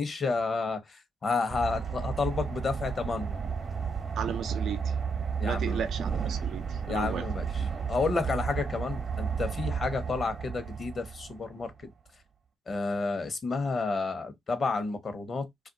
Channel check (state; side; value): normal; both; correlation 0.78